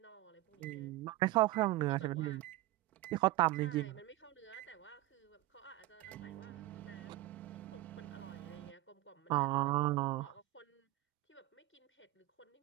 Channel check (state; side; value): quieter; left; 16.9 dB